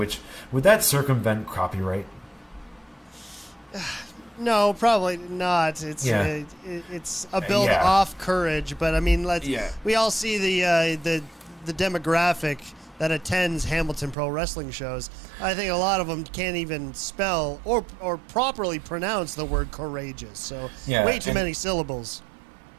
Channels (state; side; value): drops out; left; at 14.2 s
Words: would that circumvent copyright? No, probably not. It's it's a build off Courage, but I mean, we all see the demographic that attends Hamilton Pro Wrestling shows. I think a lot of them can't even spell or properly pronounce the word courageous. So way too many syllables.